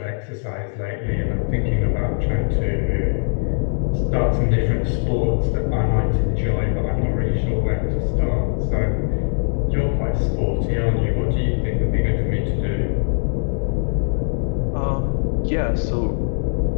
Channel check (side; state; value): right; silent; digital silence